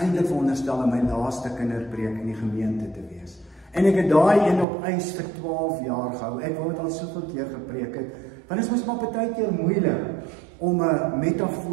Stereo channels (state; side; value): drops out; left; at 4.7 s